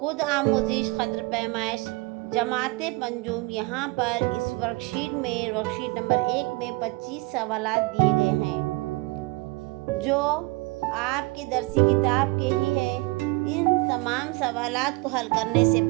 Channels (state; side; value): quieter; left; 23.9 dB